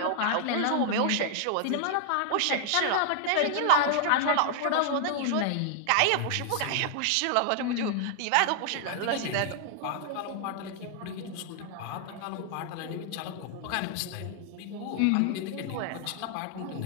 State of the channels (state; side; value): different; both; correlation 0.00